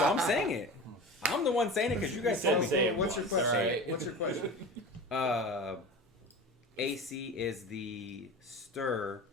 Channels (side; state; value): both; normal; correlation 0.33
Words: I'm saying it. I'm the one saying it because you guys told me. Say it What's your question? Alright. What's your question? AC is the